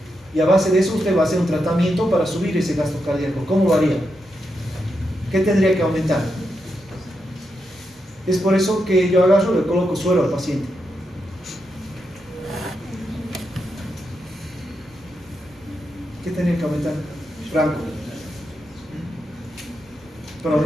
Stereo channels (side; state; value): both; normal; correlation 0.84